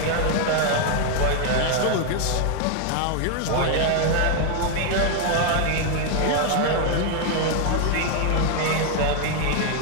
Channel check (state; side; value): different; both; correlation 0.00